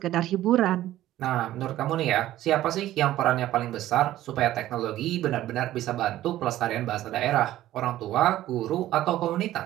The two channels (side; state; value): left; quieter; 14.1 dB